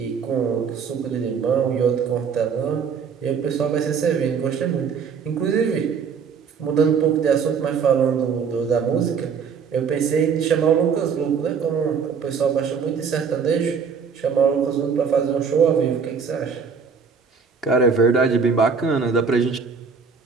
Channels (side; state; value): left; quieter; 6.1 dB